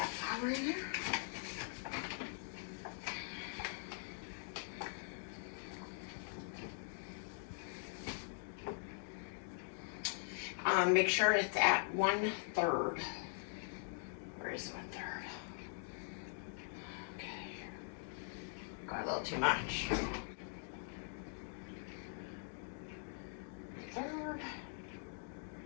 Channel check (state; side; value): silent; right; digital silence